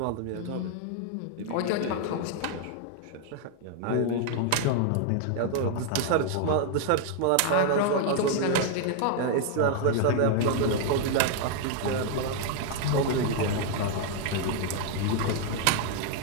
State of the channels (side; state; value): both; different; correlation 0.00